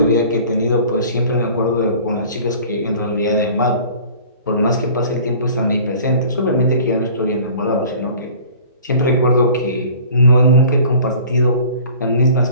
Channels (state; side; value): inverted; both; correlation -0.47